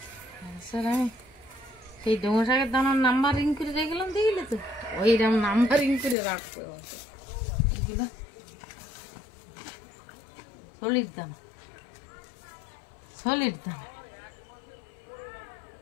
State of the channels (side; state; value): right; drops out; at 6.2 s